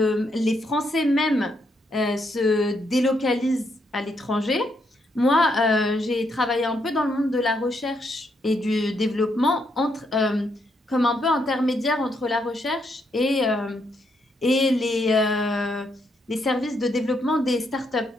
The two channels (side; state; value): both; normal; correlation 0.77